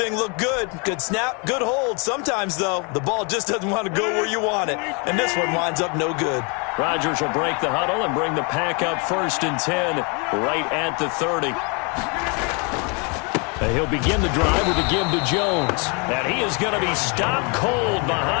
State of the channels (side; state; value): right; quieter; 33.3 dB